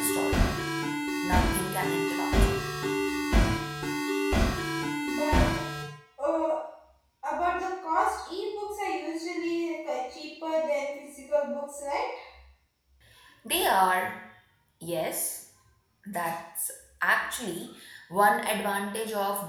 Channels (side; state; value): both; identical; correlation 1.00